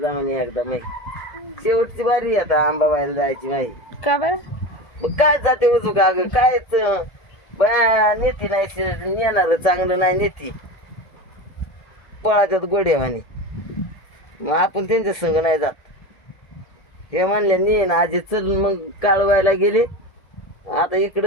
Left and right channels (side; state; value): right; late; 1.6 ms